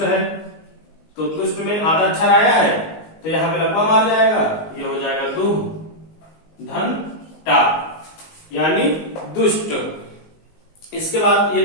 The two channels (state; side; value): late; right; 19 ms